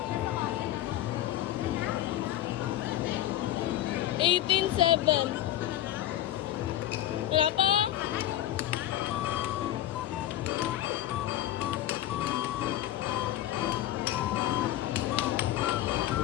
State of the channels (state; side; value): quieter; right; 13.2 dB